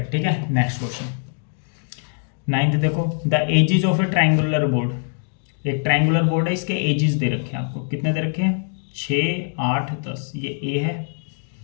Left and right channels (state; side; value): silent; right; digital silence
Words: ठीक है, नेक्स्ट क्वेश्चन 9th देखो, the edges of A triangular board. एक ट्रायंगुलर बोर्ड है, इसके एजिज दे रखे हैं आपको। कितने दे रखे हैं, 6 8 10। ये ए है,